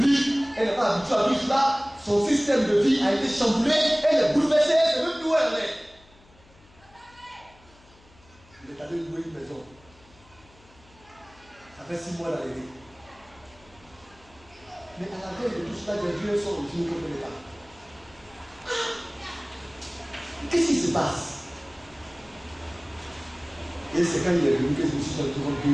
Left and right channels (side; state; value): left; noise; hum, 27 dB below the sound